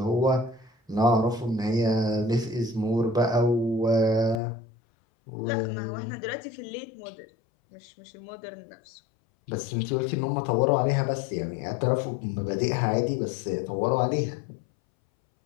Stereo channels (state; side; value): drops out; right; at 4.4 s